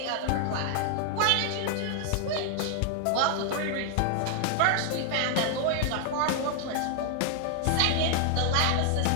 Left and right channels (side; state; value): both; different; correlation 0.00